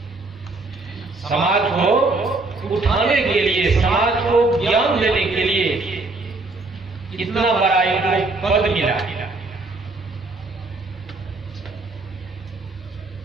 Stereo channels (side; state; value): left; quieter; 3.3 dB